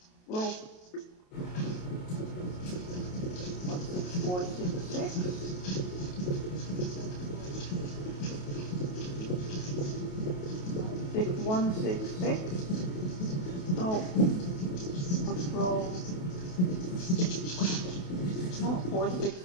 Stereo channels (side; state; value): right; late; 28 ms